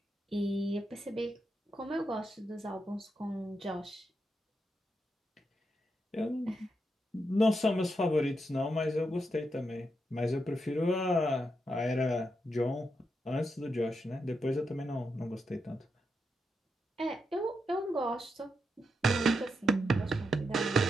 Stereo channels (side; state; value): both; normal; correlation 0.84